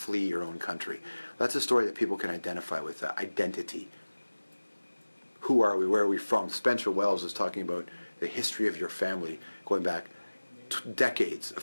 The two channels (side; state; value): both; inverted; correlation -1.00